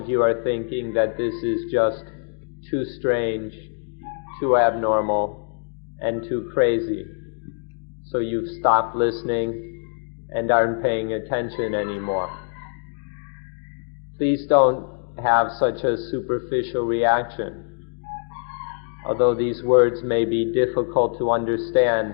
you are thinking that this is just too strange, too abnormal, and too crazy. So you've stopped listening and aren't paying attention anymore. Please don't have such a superficial reaction. Although these words may be difficult to understand,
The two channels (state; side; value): silent; right; digital silence